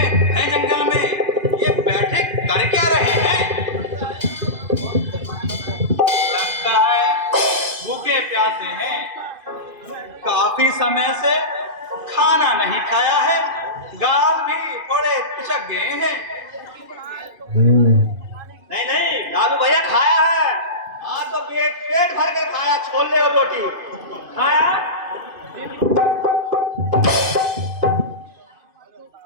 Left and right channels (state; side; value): late; left; 2.5 ms